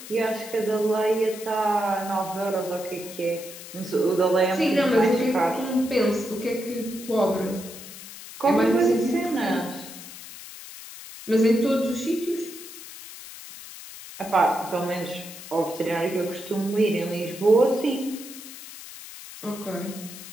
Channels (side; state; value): left; noise; hiss, 14 dB below the sound